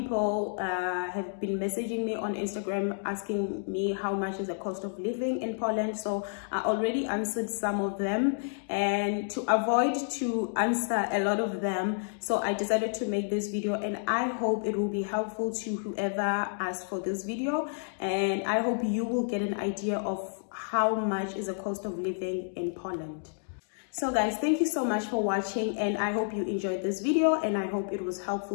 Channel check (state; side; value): silent; right; digital silence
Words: have been messaging me on Instagram asking me how much is the cost of living in Poland. So I already answered some of them, and to avoid to answer a lot of them, so I decided to make this video, and I hope it will be helpful to whoever asked for this video, and I hope you will get an idea of how much is the cost of living in Poland. So guys, thank you so much for watching, and I hope you enjoyed this video, and I hope it was